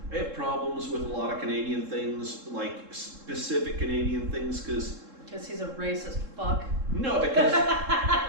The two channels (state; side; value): late; left; 3.7 ms